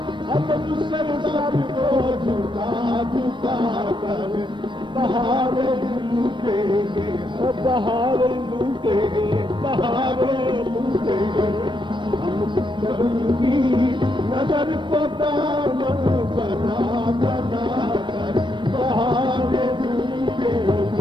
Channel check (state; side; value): late; left; 0.23 ms